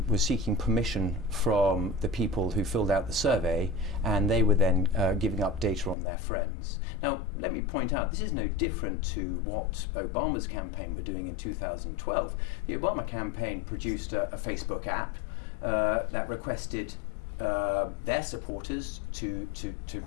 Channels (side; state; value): right; drops out; at 6.0 s